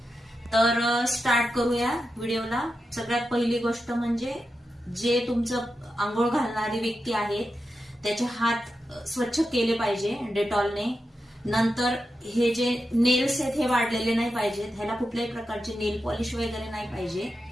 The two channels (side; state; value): both; normal; correlation 0.89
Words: तर स्टार्ट करूया व्हिडिओला। सगळ्यात पहिली गोष्ट म्हणजे जे तुमचं अंघोळ घालणारी व्यक्ती आहे त्याचे हात स्वच्छ केले पाहिजे डेटॉलने। नंतर हे जे नेल्स आहेत हे वाढलेले नाही पाहिजेत, ह्याला कुठल्याही प्रकारचे नेल पॉलिश वगैरे नाही पाहिजे,